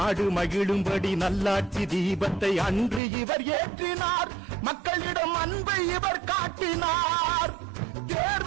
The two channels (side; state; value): left; drops out; at 3.0 s